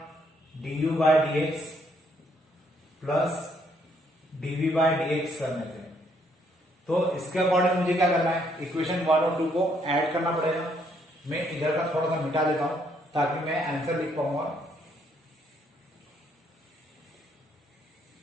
du by dx plus dv by dx करने से। तो इसके अकॉर्डिंग मुझे क्या करना है, इक्वेशन 1 और 2 को ऐड करना पड़ेगा। मैं इधर का थोड़ा सा मिटा देता हूं ताकि मैं आंसर लिख पाऊंगा।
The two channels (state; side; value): normal; both; correlation 0.70